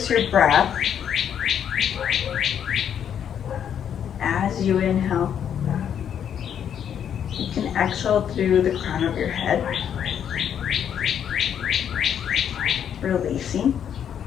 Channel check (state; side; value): quieter; right; 8.8 dB